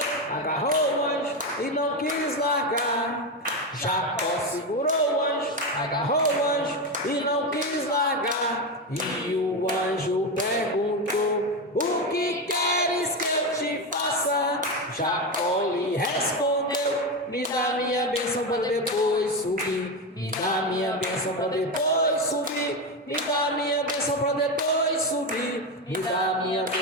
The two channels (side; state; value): both; normal; correlation 0.14